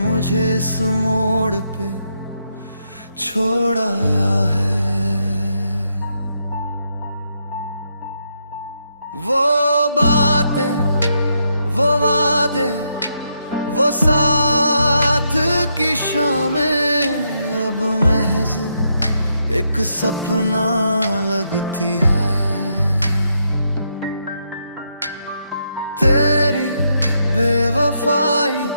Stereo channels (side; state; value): both; inverted; correlation -0.79